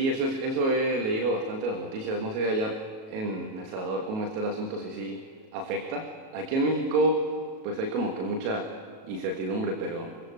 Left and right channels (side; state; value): left; late; 37 ms